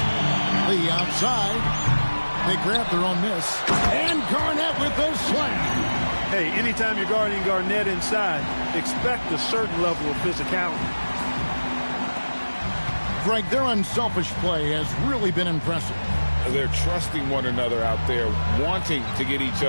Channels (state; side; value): inverted; both; correlation -1.00